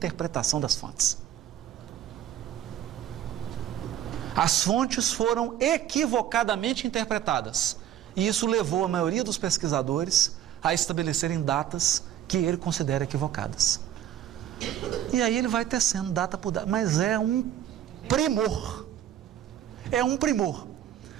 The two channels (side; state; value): left; quieter; 10.9 dB